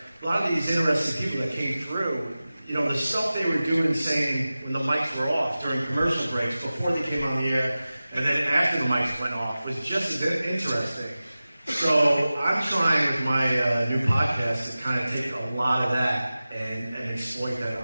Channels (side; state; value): both; inverted; correlation -0.96